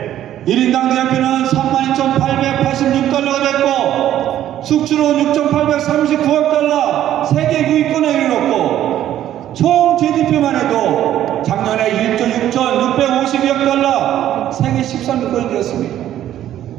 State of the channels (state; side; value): quieter; left; 12.0 dB